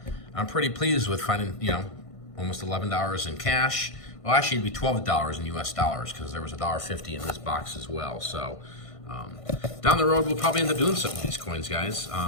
I'm pretty pleased with finding, you know, almost $11 in cash. Well, actually, it'd be $12 in US dollars because there was $1.50 in this box as well. So down the road, we'll probably end up doing something with these coins, guys.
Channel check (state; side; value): late; right; 1.5 ms